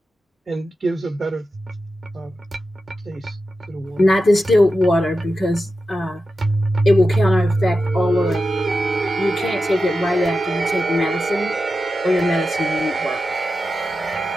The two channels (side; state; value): both; normal; correlation 0.91